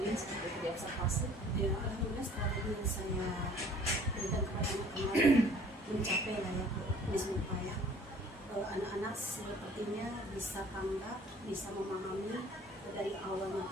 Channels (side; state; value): both; normal; correlation 0.53